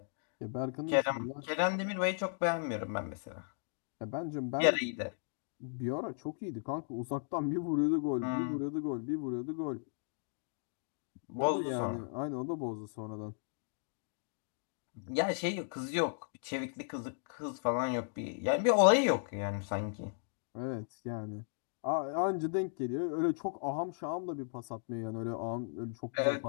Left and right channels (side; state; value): right; silent; digital silence